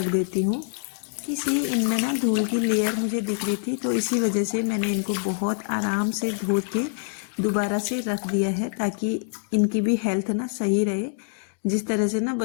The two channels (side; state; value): right; silent; 59 dB below the other